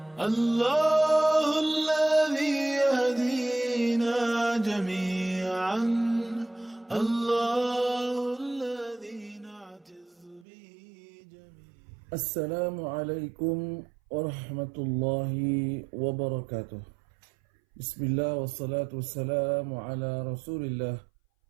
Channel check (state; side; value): drops out; left; at 10.5 s